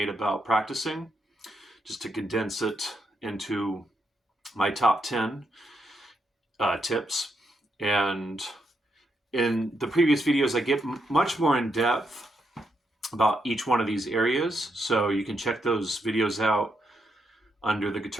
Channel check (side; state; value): both; normal; correlation 0.80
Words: about practicing, just to condense it into my top 10 tips. And in the previous videos, I get much more in depth about each one of these areas. So you can check those videos out under the